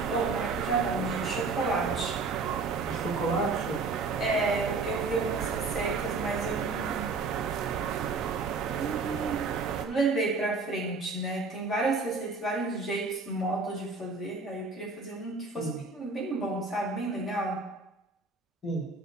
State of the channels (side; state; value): left; quieter; 4.0 dB